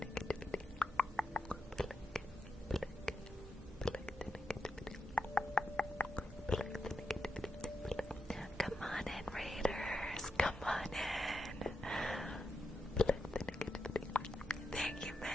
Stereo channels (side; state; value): both; normal; correlation 0.85